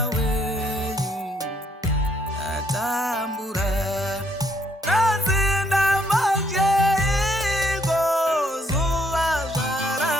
wenyu ndatambura. Nazinda majeiko zuva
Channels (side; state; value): both; normal; correlation 0.69